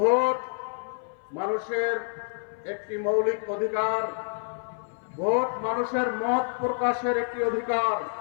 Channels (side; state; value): right; silent; 57 dB below the other